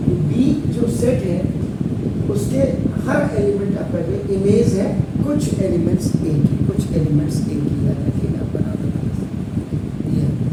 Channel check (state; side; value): identical; both; correlation 1.00